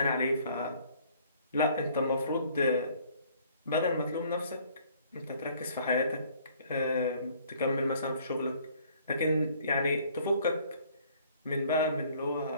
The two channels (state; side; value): inverted; both; correlation -0.58